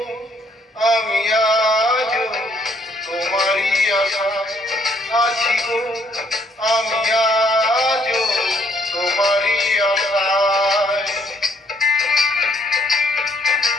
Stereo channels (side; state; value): both; normal; correlation 0.67